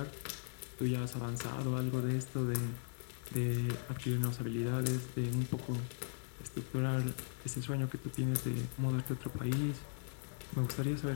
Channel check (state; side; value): silent; right; digital silence